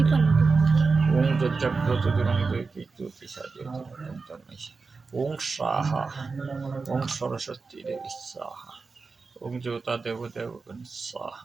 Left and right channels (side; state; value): left; quieter; 4.4 dB